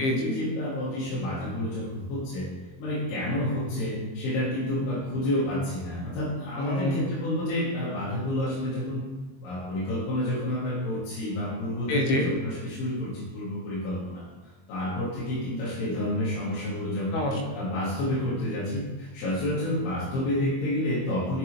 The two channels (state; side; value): late; right; 22 ms